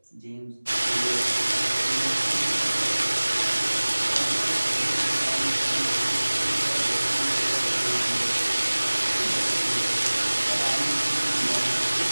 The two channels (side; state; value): both; inverted; correlation -1.00